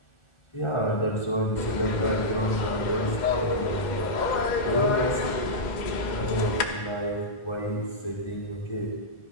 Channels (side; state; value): right; late; 2.1 ms